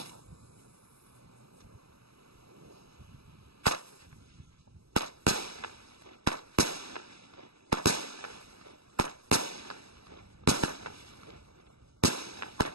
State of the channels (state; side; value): late; left; 0.77 ms